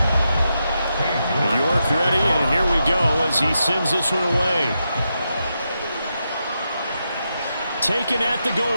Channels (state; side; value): inverted; both; correlation -0.86